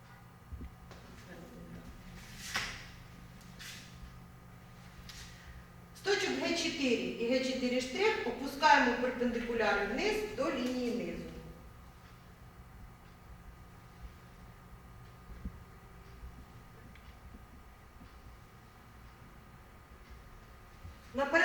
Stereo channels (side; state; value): both; identical; correlation 1.00